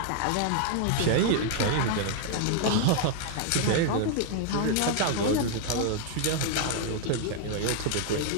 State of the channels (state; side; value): different; both; correlation 0.00